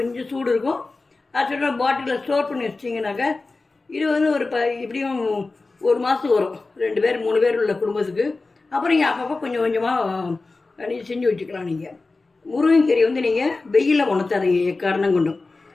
சூடு இருக்கும். அரைச்சிட்டு பாட்டிலில் ஸ்டோர் பண்ணி வச்சிட்டிங்கனாக்கா இது ஒரு இப்படியும் 1 மாதத்துக்கு வரும். 2 பேர் 3 பேர் உள்ள குடும்பத்துக்கு. அப்புறம் நீங்கள் அப்பப்போ கொஞ்சம் கொஞ்சமாக நீங்கள் செஞ்சு வச்சுக்கலாம். நீங்கள் முருங்கைக்கீரை நீங்கள் வெயிலில் உணர்த்தாதீங்க. காரணம் கொண்டும்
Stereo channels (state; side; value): quieter; right; 3.6 dB